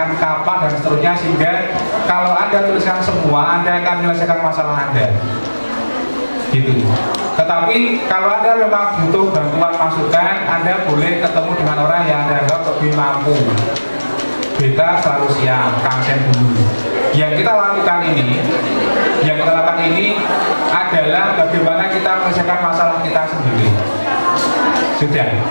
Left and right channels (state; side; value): inverted; both; correlation -1.00